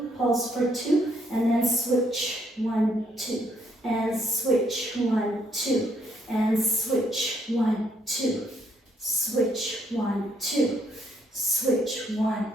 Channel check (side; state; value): both; normal; correlation 0.71